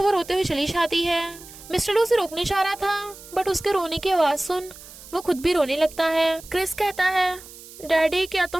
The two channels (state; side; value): noise; right; hiss, 18 dB below the sound